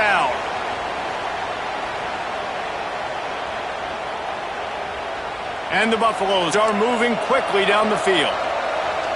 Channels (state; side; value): identical; both; correlation 1.00